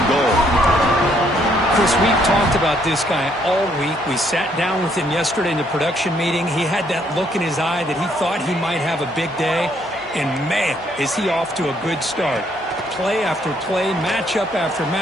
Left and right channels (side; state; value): both; normal; correlation 0.69